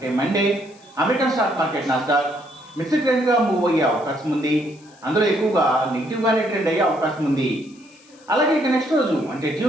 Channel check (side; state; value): left; noise; hiss, 28 dB below the sound